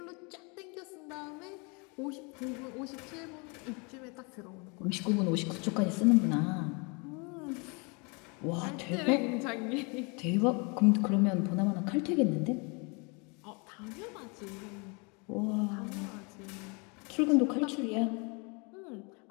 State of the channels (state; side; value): quieter; right; 31.4 dB